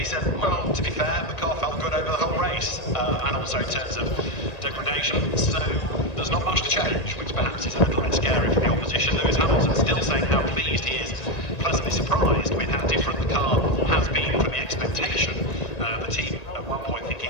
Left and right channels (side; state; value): right; late; 1.8 ms